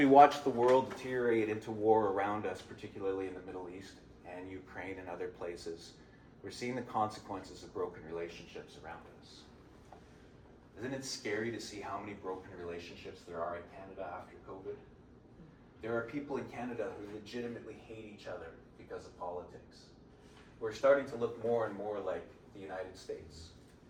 watch the world deteriorate into war around us, particularly in the Middle East and Ukraine and other places, we're seeing the consequences of broken relationships around us. Isn't it scary to see how many broken relationships there are in Canada after COVID? There are people in Canada who legitimately hate each other because of politics. We're starting to look more and more like the United States.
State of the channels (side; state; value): both; identical; correlation 1.00